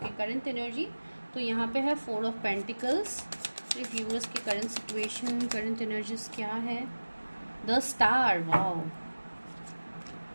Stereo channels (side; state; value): both; inverted; correlation -1.00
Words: की करंट एनर्जी। तो यहाँ पे है 4 ऑफ पेंटिकल्स, व्यूअर्स की करंट सिचुएशन, करंट एनर्जीज क्या है। The star, wow,